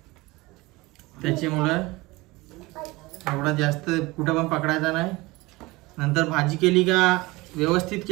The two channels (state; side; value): quieter; left; 22.0 dB